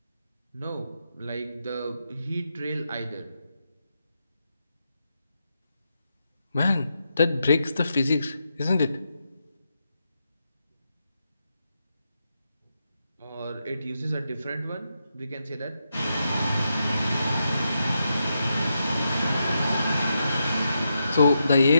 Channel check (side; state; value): both; inverted; correlation -0.85